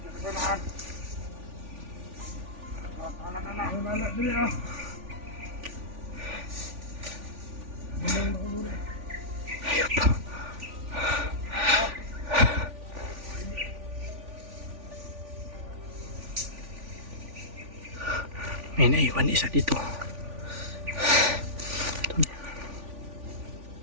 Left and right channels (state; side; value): late; left; 3.4 ms